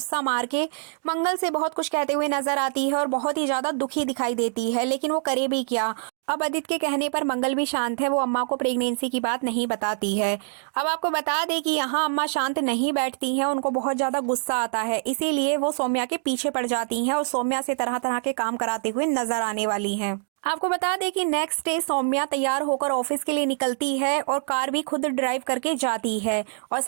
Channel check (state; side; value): silent; left; digital silence